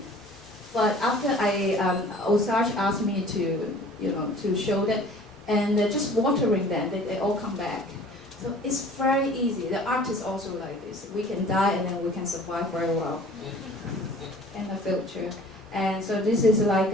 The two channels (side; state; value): both; normal; correlation 0.48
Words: but after Osage asked me to show that, and just watering them, they all come back. So it's very easy. The art is also like this. We can die and then we can survive very well in the future. And so this is like